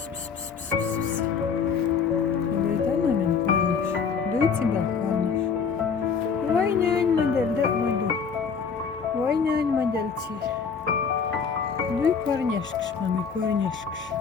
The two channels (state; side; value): quieter; right; 6.0 dB